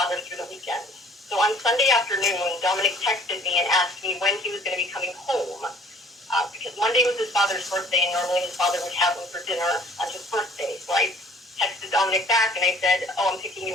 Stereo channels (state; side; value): normal; both; correlation 0.54